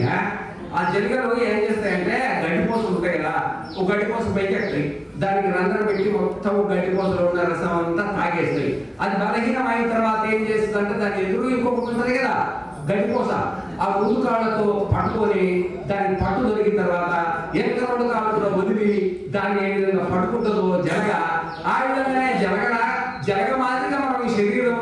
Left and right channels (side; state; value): both; identical; correlation 1.00